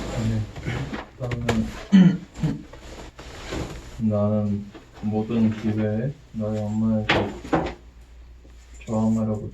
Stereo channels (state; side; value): identical; both; correlation 1.00